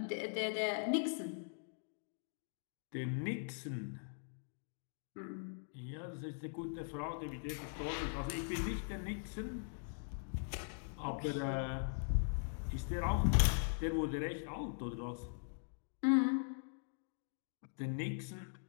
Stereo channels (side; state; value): right; silent; digital silence